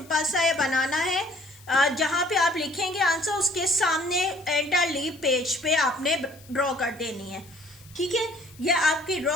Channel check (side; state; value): left; noise; hiss, 24 dB below the sound